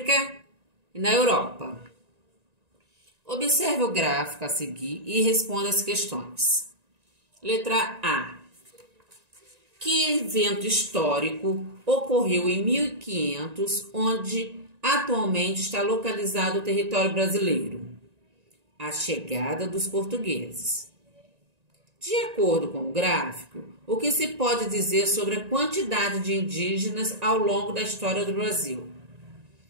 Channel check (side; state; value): left; late; 1.9 ms